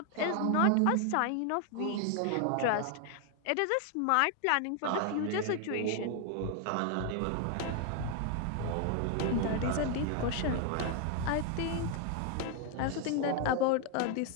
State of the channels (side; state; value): both; different; correlation 0.00